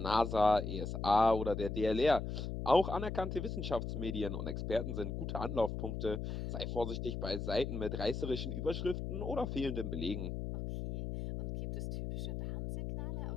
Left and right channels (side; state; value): left; noise; hum, 4 dB below the sound